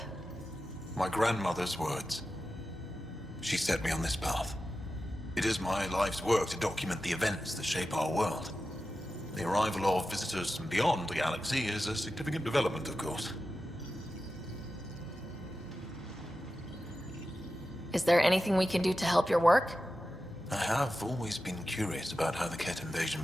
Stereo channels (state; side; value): normal; both; correlation 0.92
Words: My grandmother's words. She set me on this path. It is my life's work to document the events that shape our world. The arrival of visitors from beyond the galaxy is a significant development, of course. Is there anything we can do to help your work? I have always been curious about how the Ket invasion